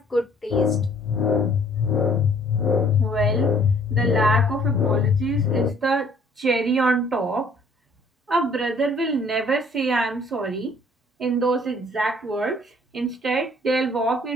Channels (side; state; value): both; normal; correlation 0.58